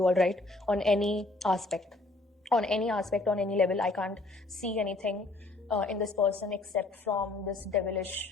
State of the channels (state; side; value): quieter; right; 3.1 dB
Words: all right, on any aspect, on any level. I can't see anything in this person except from this